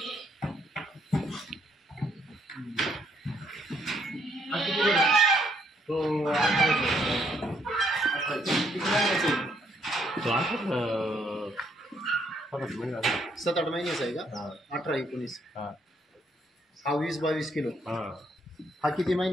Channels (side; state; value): both; normal; correlation 0.71